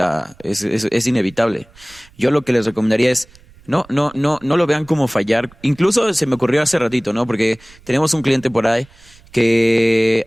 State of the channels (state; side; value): noise; right; rumble, 26 dB below the sound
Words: es inevitable. Yo lo que les recomendaría es no lo vean como fallar. Incluso se me ocurrió hace ratito, ¿no? Porque tenemos un cliente por ahí que